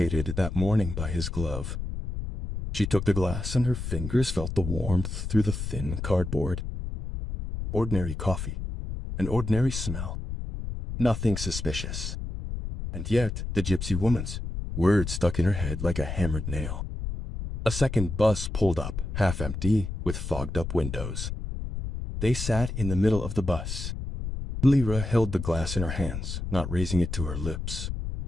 that morning by his glove. She took the glass and her fingers felt the warmth through the thin cardboard. Ordinary coffee, an ordinary smell. Nothing suspicious. And yet the gypsy woman's words stuck in her head like a hammered nail. A second bus pulled up, half empty, with fogged-up windows. They sat in the middle of the bus. Lere held the glass in her hands, not raising it to her lips.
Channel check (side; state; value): left; noise; rumble, 5 dB below the sound